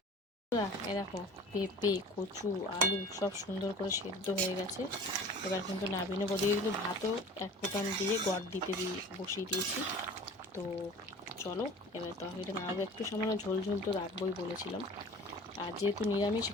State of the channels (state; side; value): normal; both; correlation 0.42